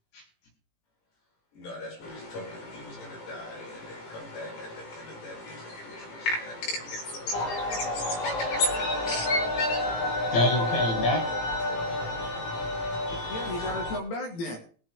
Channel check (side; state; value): right; late; 18 ms